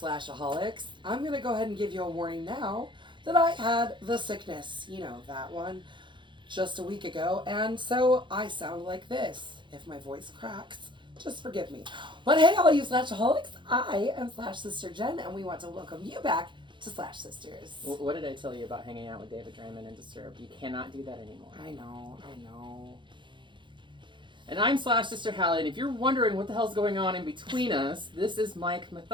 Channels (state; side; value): late; left; 0.23 ms